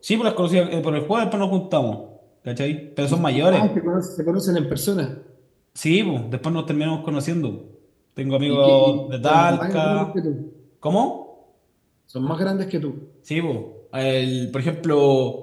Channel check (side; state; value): both; identical; correlation 1.00